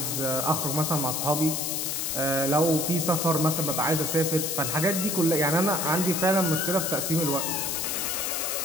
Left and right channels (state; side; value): noise; left; hiss, 1 dB below the sound